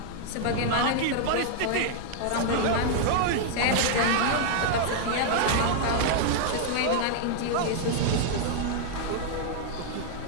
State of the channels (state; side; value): different; both; correlation 0.00